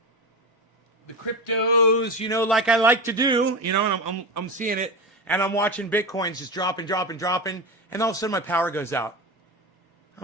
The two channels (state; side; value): normal; both; correlation 0.22